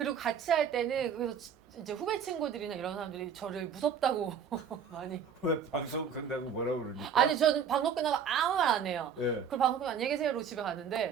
같이 할 때는 그래서 이제 후배 친구들이나 이런 사람들이 저를 무섭다고 많이. 왜 방송 끝나고 뭐라 그러니까? 아니 저는 방송 끝나고 아무 말 안 해요. 예. 그리고 방송 끝나고 안녕히 계세요 이러고 집에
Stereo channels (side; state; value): left; quieter; 7.2 dB